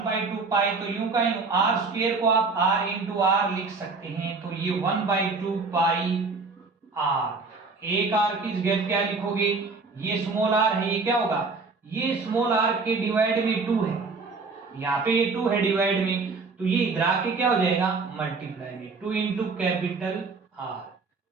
पाई तो यूं का यूं, आर स्क्वायर को आप r इंटू आर लिख सकते हैं। तो ये 1/2 पाई आर, एक आर की जगह क्या लिखोगे? ये स्मॉल आर है, ये क्या होगा? ये स्मॉल आर के डिवाइड में 2 है, यहाँ पे ये 2 है डिवाइड में, तो ये इधर आके क्या हो जाएगा? मल्टीप्लाई में 2 इंटू कैपिटल आर।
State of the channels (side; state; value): left; quieter; 4.2 dB